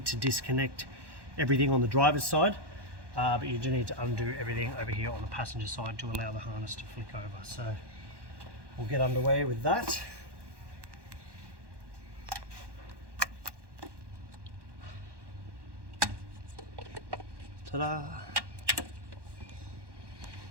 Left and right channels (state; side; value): late; left; 1.1 ms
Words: to disconnect everything on the driver's side, but you do need to undo everything over here on the passenger side to allow the harness to flick over. So we'll get underway with that. Ta-da!